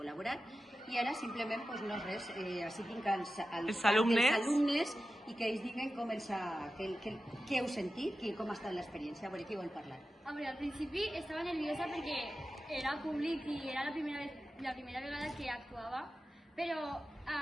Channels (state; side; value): normal; both; correlation 0.93